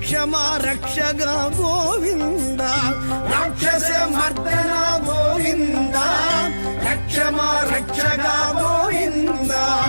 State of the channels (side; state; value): both; inverted; correlation -1.00